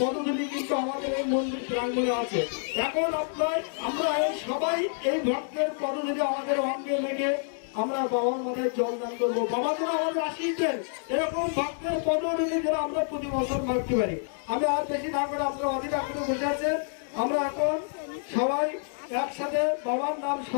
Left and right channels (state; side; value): silent; right; digital silence